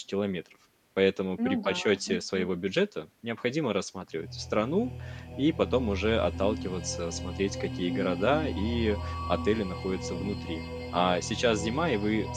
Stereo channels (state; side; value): identical; both; correlation 1.00